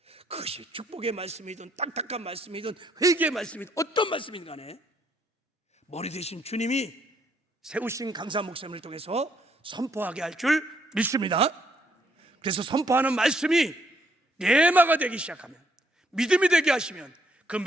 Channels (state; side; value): normal; both; correlation 0.71